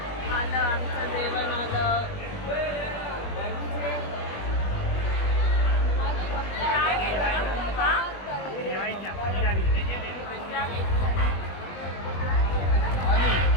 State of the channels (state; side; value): late; right; 20 ms